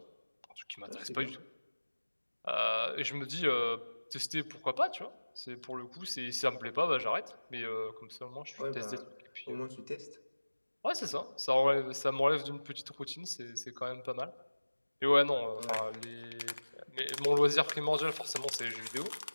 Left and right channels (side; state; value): both; inverted; correlation -1.00